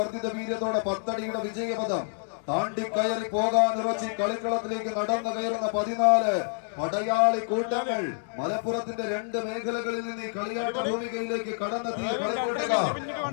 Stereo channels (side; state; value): right; silent; 59 dB below the other